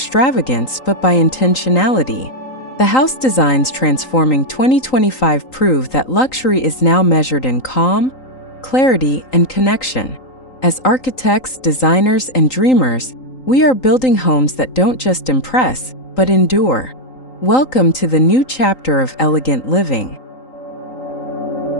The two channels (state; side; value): late; right; 3.9 ms